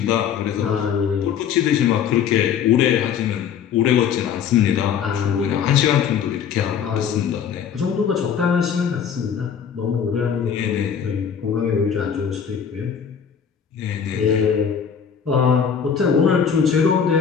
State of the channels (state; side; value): quieter; right; 7.7 dB